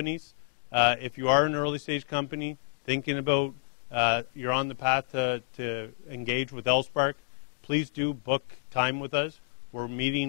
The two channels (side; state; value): right; silent; digital silence